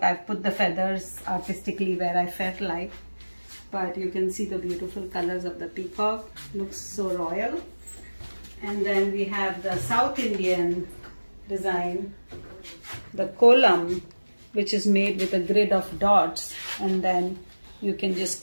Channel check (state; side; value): inverted; both; correlation -1.00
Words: I've put the feathers artistically where I felt like. But you can see the beautiful colors of the peacock. Looks so royal. And then we have the South Indian design, the Kolam, which is made with a grid of dots, and then you can